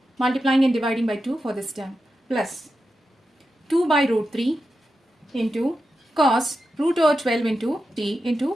Multiplying and dividing by 2 for this term, plus 2 by root 3 into cos root over 12 into t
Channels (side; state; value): both; normal; correlation 0.89